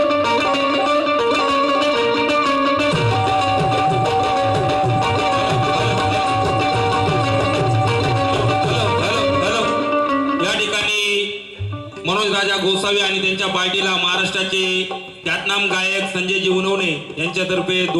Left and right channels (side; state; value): both; identical; correlation 1.00